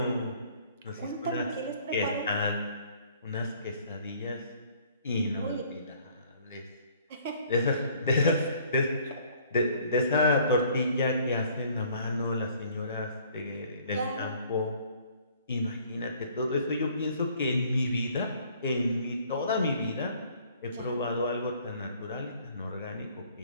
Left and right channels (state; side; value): inverted; both; correlation -0.58